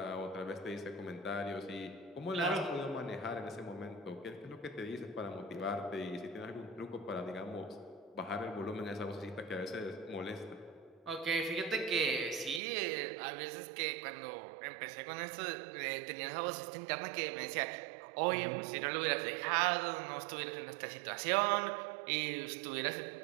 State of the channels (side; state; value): left; drops out; at 12.6 s